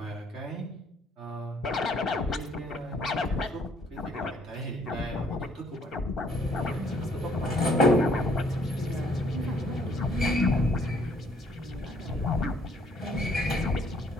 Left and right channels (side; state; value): both; normal; correlation 0.63